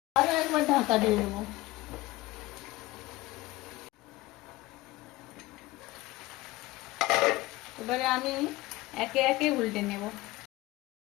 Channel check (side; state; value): right; quieter; 19.2 dB